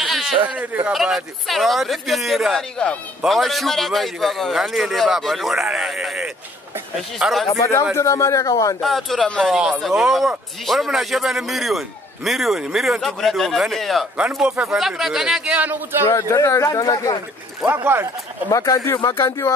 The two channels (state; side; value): normal; both; correlation 0.61